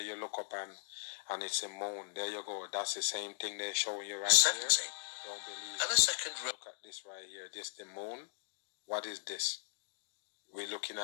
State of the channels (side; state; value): right; silent; digital silence